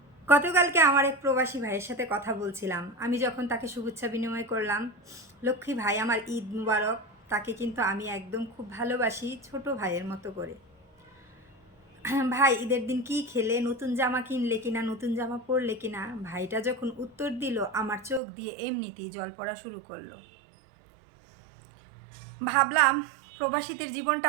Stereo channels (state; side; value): drops out; left; at 18.2 s